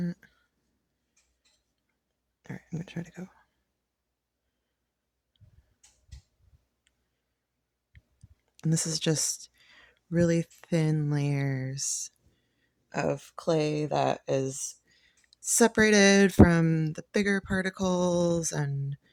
All right, I'm gonna try to go. And this is just really thin layers of clay that is separated from the bigger particles, and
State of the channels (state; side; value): identical; both; correlation 1.00